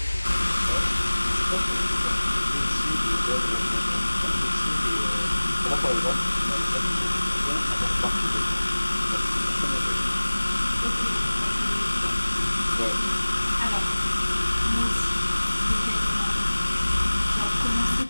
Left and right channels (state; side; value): inverted; both; correlation -1.00